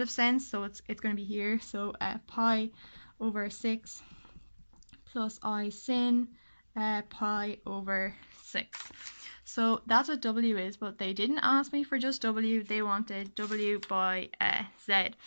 sense, so it's going to be here, so pi over 6 plus I sin pi over 6. So that's what w is, but they didn't ask me for just w, they wanted w by z.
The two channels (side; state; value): both; inverted; correlation -1.00